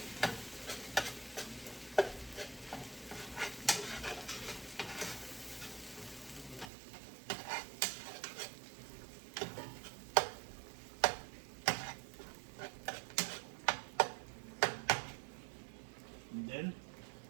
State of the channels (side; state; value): left; drops out; at 6.7 s